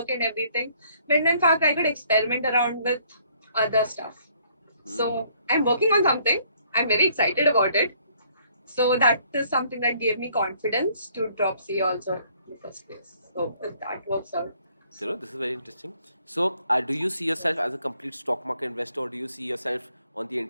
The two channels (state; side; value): inverted; both; correlation -0.64